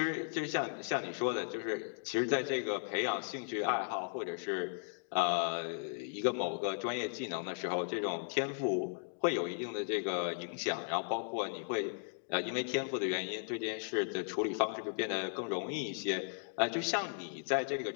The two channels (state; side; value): silent; right; digital silence